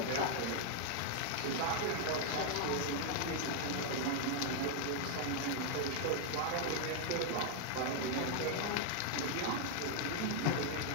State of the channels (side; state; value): both; different; correlation 0.00